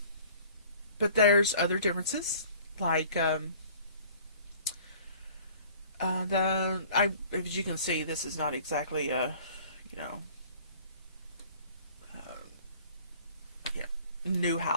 there's other differences, like as you can see, this is not exactly a, new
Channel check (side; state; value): both; inverted; correlation -0.50